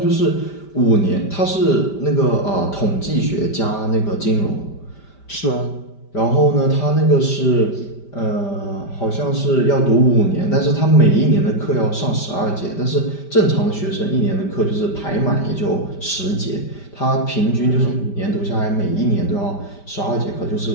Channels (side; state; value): right; late; 5.1 ms